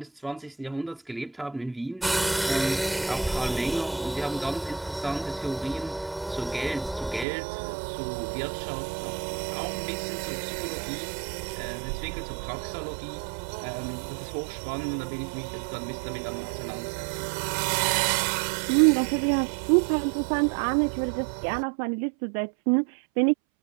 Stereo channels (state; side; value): drops out; left; at 7.2 s